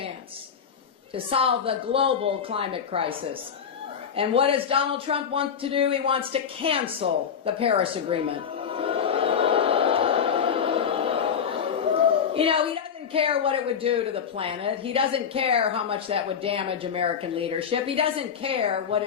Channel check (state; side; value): quieter; right; 7.4 dB